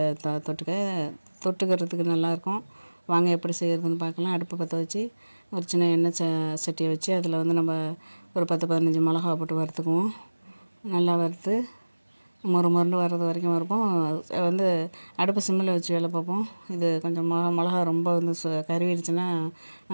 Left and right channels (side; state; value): both; inverted; correlation -1.00